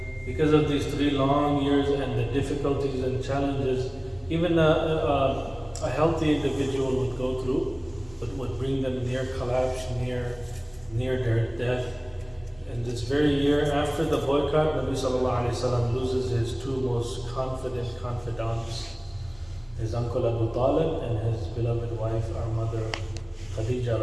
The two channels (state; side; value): noise; right; rumble, 26 dB below the sound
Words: because of these 3 long years and the difficulties and challenges, even a healthy individual would go through, but would bring them near collapse, near their death. And this very year after the boycott, Nabi sallallahu alayhi wasallam loses his 2 most confident confidants, his uncle Abu Talib and his beloved wife, our mother Khadija